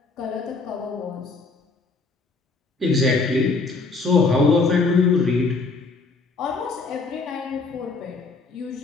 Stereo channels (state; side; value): quieter; right; 3.9 dB